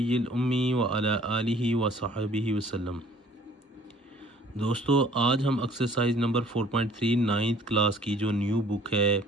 उम्मी व अला आलिहि व सहाबिहि वसल्लम। दोस्तों, आज हम एक्सरसाइज नंबर 4.3 नाइन्थ क्लास की जो न्यू बुक है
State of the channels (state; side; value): normal; both; correlation 0.55